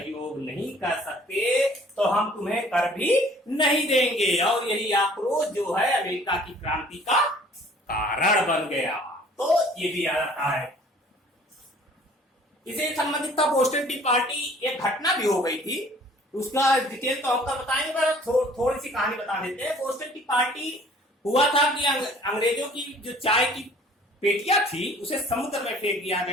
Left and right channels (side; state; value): both; normal; correlation 0.53